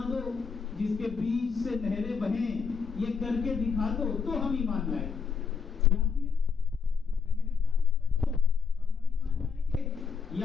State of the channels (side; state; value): right; quieter; 5.8 dB